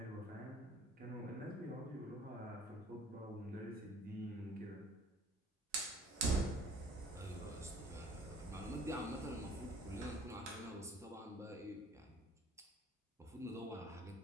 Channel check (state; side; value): normal; both; correlation 0.54